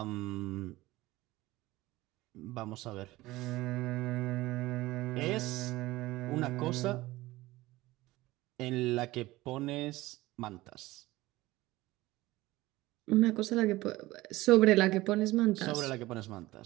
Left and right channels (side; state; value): left; quieter; 18.6 dB